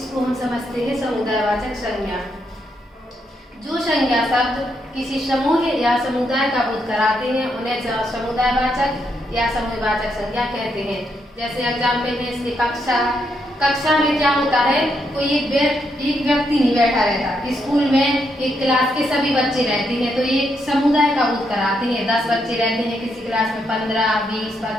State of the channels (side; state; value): both; normal; correlation 0.79